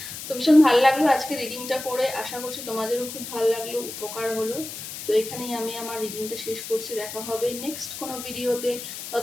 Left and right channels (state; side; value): noise; left; hiss, 9 dB below the sound